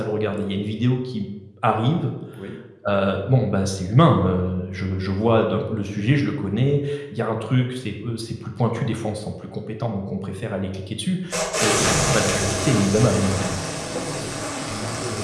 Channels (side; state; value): both; identical; correlation 1.00